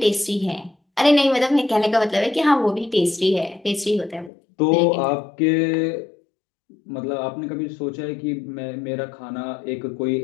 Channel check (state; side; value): drops out; right; at 4.3 s